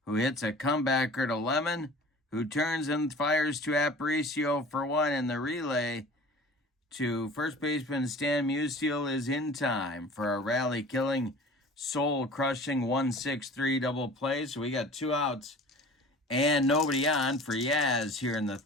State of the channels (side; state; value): both; normal; correlation 0.43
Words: who hits a comebacker to Lemon, who turns and fires to Aparicio for 1 in the relay to first baseman Stan Musial is in time for a rally-killing, soul-crushing 1-6-3 double play. So we got 2 outs and nobody on for Yaz here in the